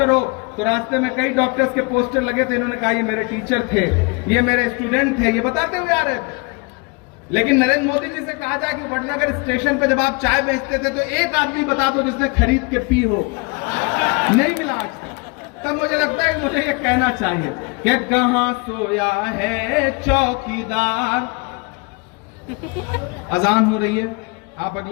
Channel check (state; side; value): quieter; right; 30.5 dB